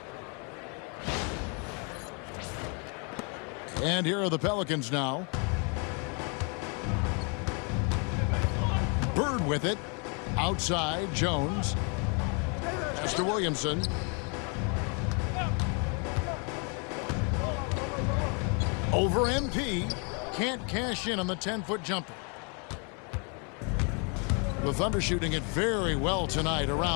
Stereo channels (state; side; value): quieter; right; 36.0 dB